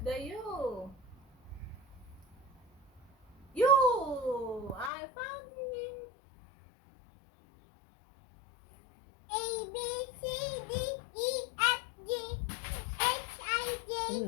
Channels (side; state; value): right; drops out; at 4.9 s